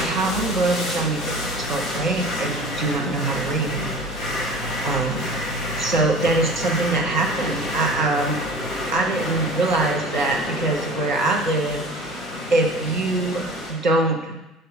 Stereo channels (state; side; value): normal; both; correlation 0.40